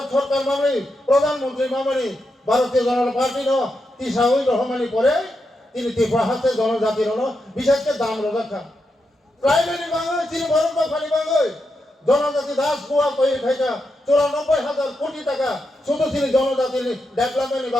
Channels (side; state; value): both; normal; correlation 0.85